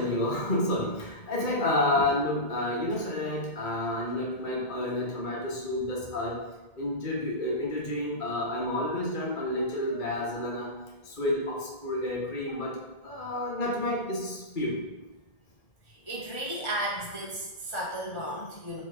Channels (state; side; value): late; right; 1.8 ms